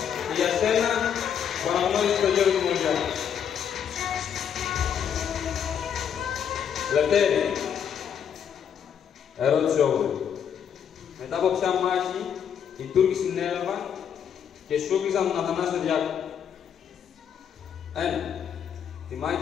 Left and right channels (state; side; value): quieter; right; 8.3 dB